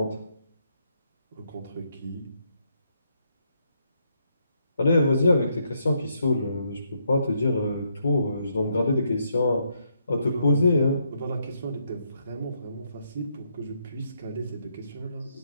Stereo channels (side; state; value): both; inverted; correlation -0.76